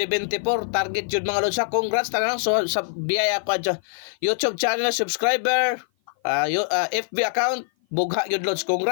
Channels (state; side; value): silent; right; 56 dB below the other